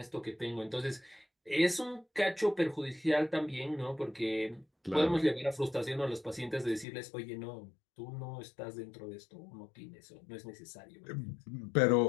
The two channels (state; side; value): drops out; right; at 6.9 s